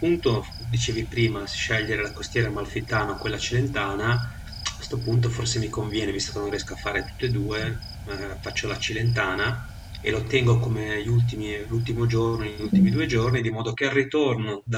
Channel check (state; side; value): identical; both; correlation 1.00